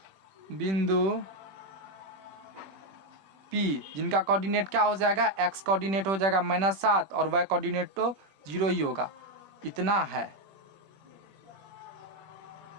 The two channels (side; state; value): left; late; 21 ms